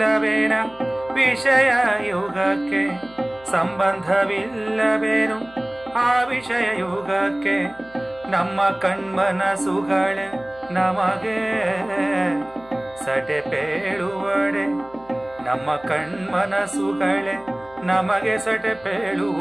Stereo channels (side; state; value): left; noise; hum, 26 dB below the sound